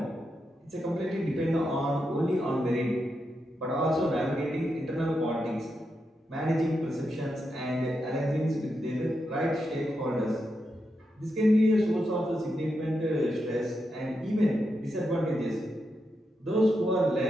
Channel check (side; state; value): both; normal; correlation 0.85